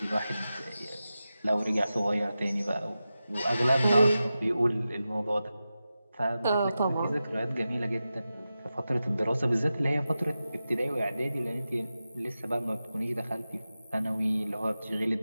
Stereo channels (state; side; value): inverted; both; correlation -0.93